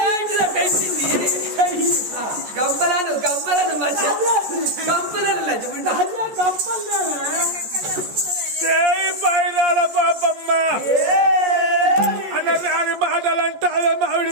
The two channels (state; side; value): late; left; 14 ms